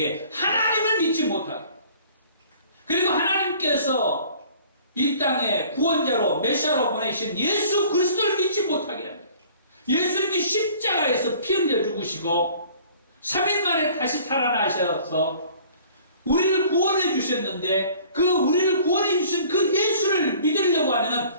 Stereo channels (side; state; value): both; inverted; correlation -0.51